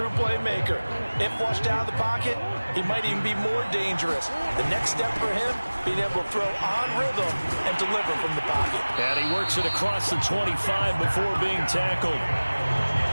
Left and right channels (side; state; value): both; inverted; correlation -1.00